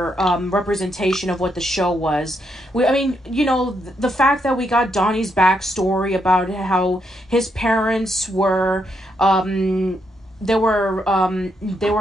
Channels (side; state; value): both; normal; correlation 0.78